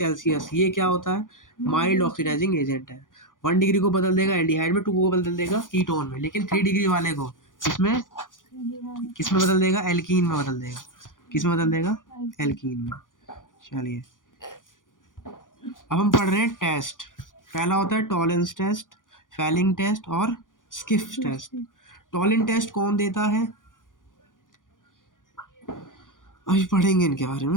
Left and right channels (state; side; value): late; right; 0.88 ms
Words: ये क्या होता है, माइल्ड ऑक्सीडाइजिंग एजेंट है। 1 डिग्री को बदल देगा एल्डिहाइड में, 2 को बदल देगा कीटोन में, लेकिन 3 डिग्री वाले को किसमें किसमें बदल देगा, एल्कीन में बदल देगा। किसमें बदल देगा, एल्कीन में। चलिए अब हम पढ़ रहे हैं टेस्ट। पहला होता है टॉलेंस टेस्ट, फैलिंग टेस्ट और स्किफ टेस्ट। टॉलेंस टेस्ट कौन देता है, अभी पढ़ेंगे इनके बारे